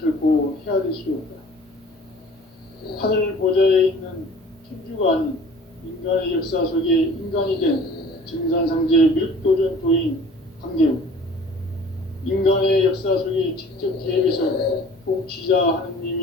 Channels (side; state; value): both; normal; correlation 0.48